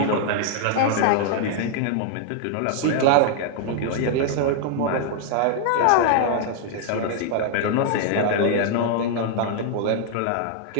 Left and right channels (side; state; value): both; different; correlation -0.01